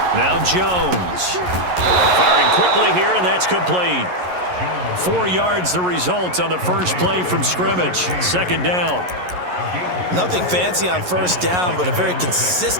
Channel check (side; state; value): left; late; 11 ms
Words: Now Jones. Firing quickly here, and that's complete. 4 yards the result on the first play from scrimmage. Second down. Nothing fancy on first down, but a very